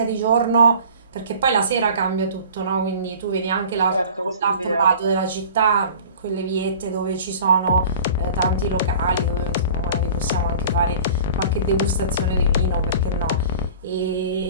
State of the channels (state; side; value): inverted; both; correlation -0.43